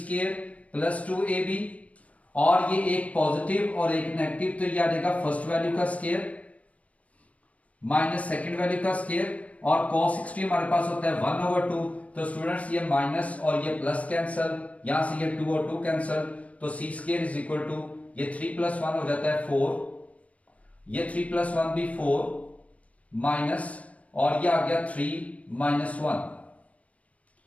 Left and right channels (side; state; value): right; late; 0.066 ms